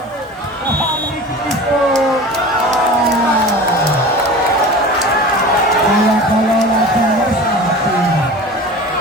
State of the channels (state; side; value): normal; both; correlation 0.36